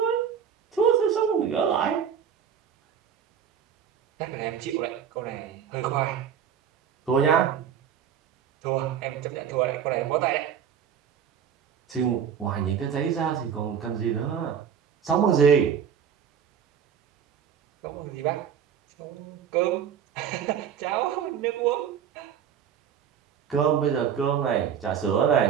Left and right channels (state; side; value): quieter; left; 8.1 dB